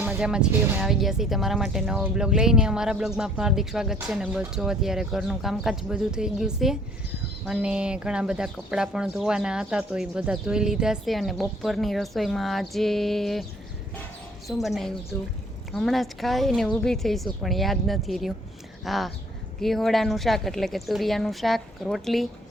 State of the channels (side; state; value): both; normal; correlation 0.58